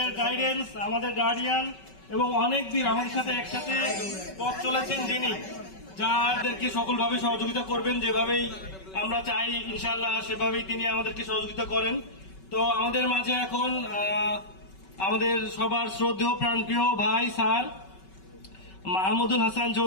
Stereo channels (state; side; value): late; right; 5.3 ms